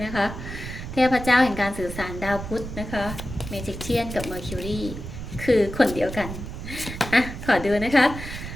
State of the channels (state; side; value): noise; right; rumble, 9 dB below the sound